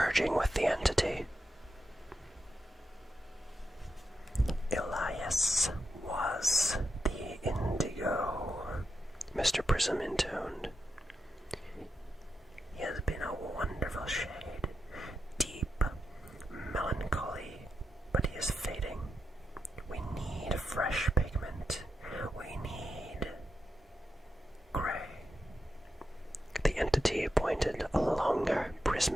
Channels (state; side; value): normal; both; correlation 0.87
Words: with the entity. "Elias was the indigo," Mr. Prism intoned. "He has been a wonderful shade, deep, melancholy, but he is fading. We need fresh pigment. We need gray." The entity pointed a longer,